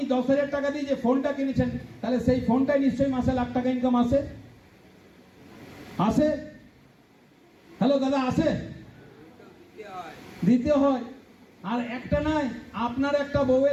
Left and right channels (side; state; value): both; identical; correlation 1.00